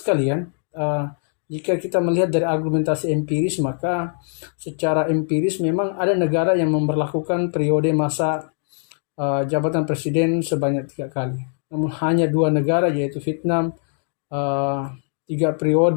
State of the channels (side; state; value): right; silent; 64 dB below the other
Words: jika kita melihat dari argumentasi empiris, maka secara empiris memang ada negara yang memberlakukan periode masa jabatan presiden sebanyak 3 kali. Namun hanya 2 negara, yaitu Vietnam 3